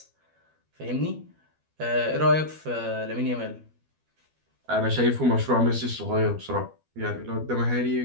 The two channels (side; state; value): left; late; 12 ms